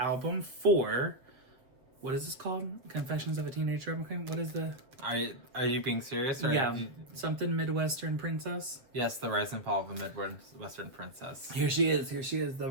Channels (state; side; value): late; left; 7.2 ms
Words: for... What is this called? Confessions of a Teenage Drama Queen? What is the... Are you being serious? Or Yeah, something Midwestern princess? Yes, the rise and fall of a Midwestern princess. Here she is. The